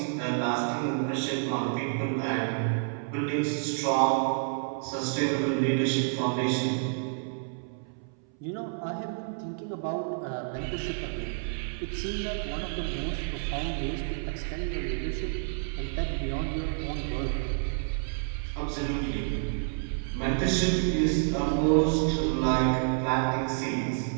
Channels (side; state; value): left; silent; 58 dB below the other